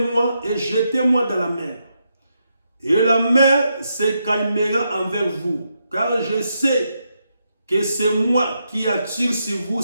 et jetez-moi dans la mer. Et la mer se calmera envers vous, car je sais que c'est moi qui attire sur vous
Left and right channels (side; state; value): both; inverted; correlation -0.82